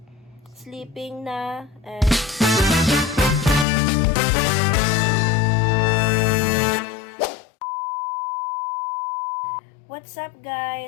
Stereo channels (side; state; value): right; drops out; at 3.7 s